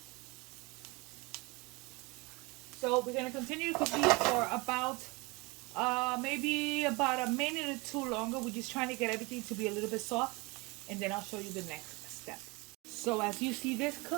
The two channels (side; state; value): left; quieter; 25.9 dB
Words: So we're gonna continue to cook these for about maybe about a minute or two longer. We're just trying to get everything to be a little bit soft, and then I'll show you the next step. So as you see this